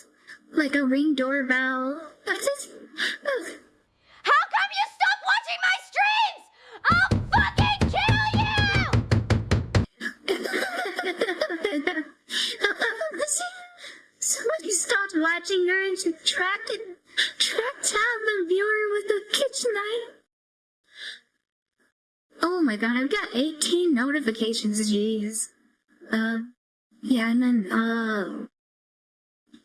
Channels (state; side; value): identical; both; correlation 1.00